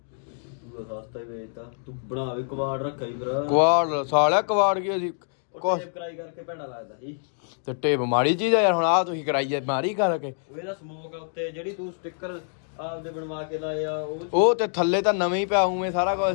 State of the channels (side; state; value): right; silent; digital silence